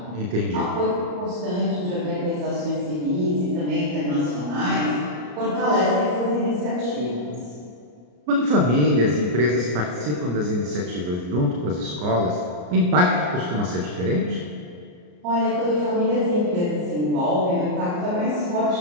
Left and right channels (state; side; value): late; left; 34 ms